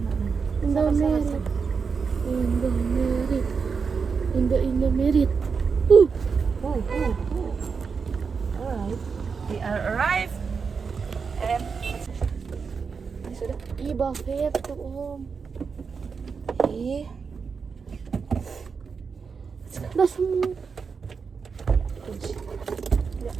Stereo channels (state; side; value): quieter; left; 5.5 dB